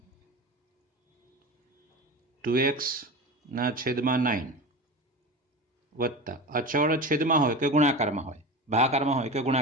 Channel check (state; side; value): normal; both; correlation 0.27